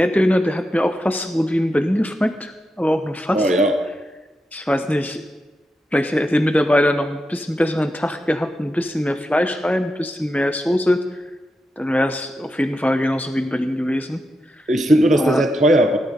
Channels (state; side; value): normal; both; correlation 0.86